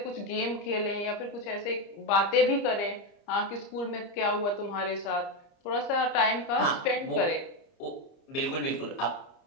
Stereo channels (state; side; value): late; right; 30 ms